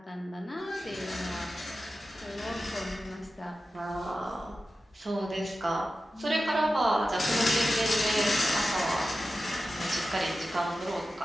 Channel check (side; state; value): both; normal; correlation 0.93